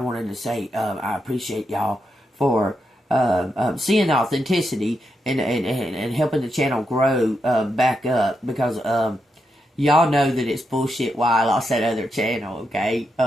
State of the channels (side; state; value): both; normal; correlation 0.84